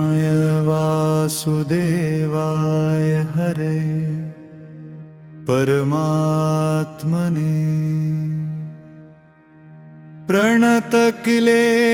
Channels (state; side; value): identical; both; correlation 1.00